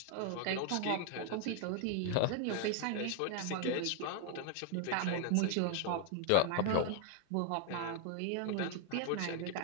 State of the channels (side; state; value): both; different; correlation 0.00